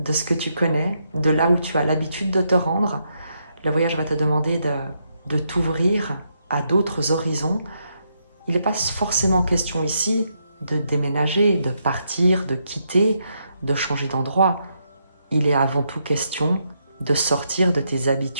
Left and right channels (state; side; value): inverted; both; correlation -0.79